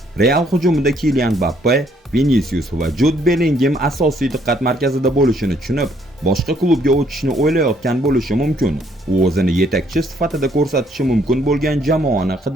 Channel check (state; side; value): normal; both; correlation 0.67